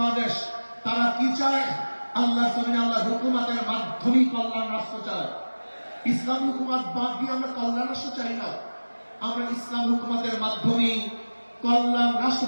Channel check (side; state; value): both; inverted; correlation -1.00